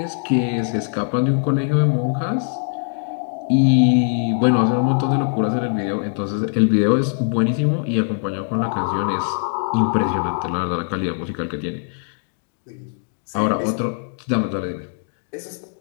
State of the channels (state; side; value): silent; right; digital silence